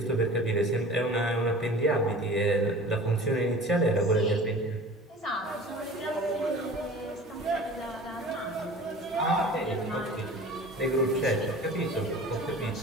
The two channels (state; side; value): normal; both; correlation 0.41